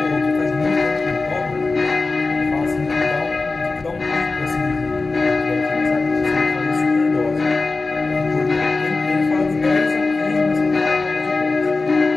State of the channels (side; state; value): right; quieter; 3.7 dB